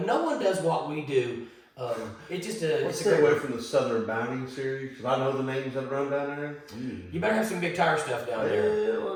No one does what we do. It's just a. Let's It's a stay great away from the Southern Bounding series because I know the names that run down there. You better have some big tire stuff down there.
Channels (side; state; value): both; identical; correlation 1.00